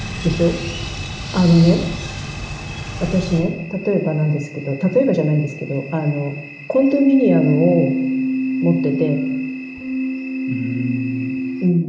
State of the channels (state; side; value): identical; both; correlation 1.00